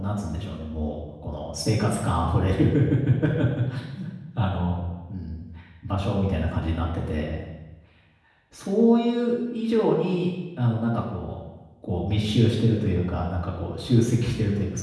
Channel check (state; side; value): identical; both; correlation 1.00